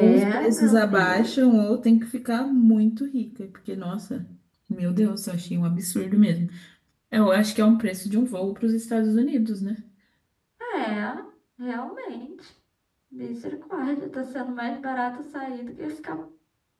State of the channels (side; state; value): both; identical; correlation 1.00